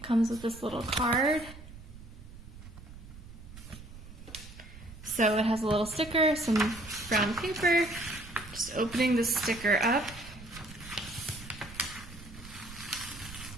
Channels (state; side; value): noise; right; rumble, 16 dB below the sound